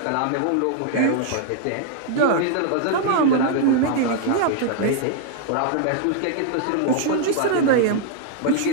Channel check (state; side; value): different; both; correlation 0.00